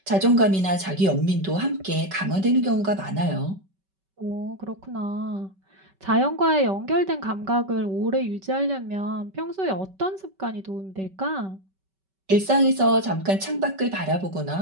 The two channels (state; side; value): late; left; 5.2 ms